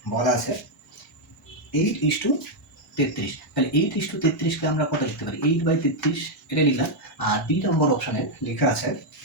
বলা আছে 8:33, তাহলে 8:33কে আমরা কত লিখতে পারি 8/33, এটা লিখলাম। আর 2 নম্বর অপশানে লেখা আছে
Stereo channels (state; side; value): normal; both; correlation 0.00